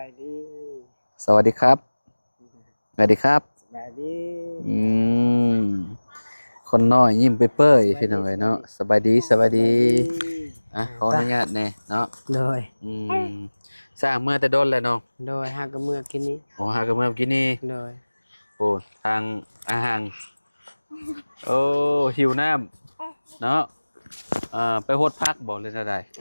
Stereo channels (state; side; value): inverted; both; correlation -1.00